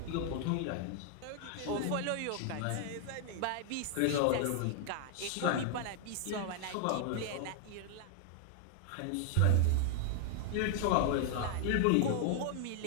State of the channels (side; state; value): both; different; correlation 0.00